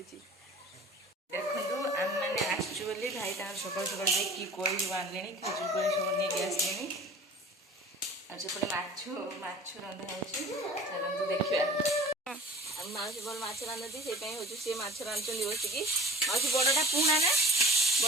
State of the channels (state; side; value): normal; both; correlation 0.44